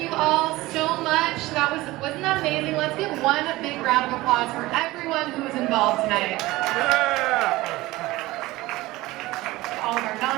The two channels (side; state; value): left; quieter; 19.0 dB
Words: you all so much. Wasn't that amazing? Let's give one big round of applause for everyone who was involved tonight. All of our